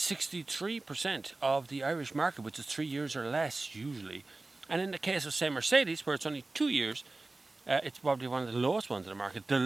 of the Irish market, which is 3 years or less usually. And in the case of, say, Mercedes, where it's only 2 years, it's probably one of the lowest ones in the market. The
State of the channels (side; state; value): left; quieter; 3.2 dB